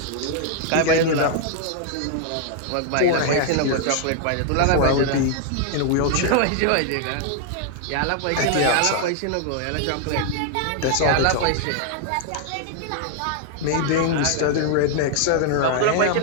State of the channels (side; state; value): both; different; correlation 0.00